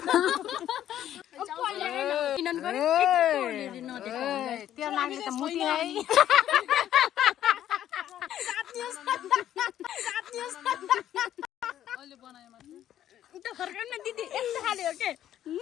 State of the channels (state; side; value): quieter; right; 11.4 dB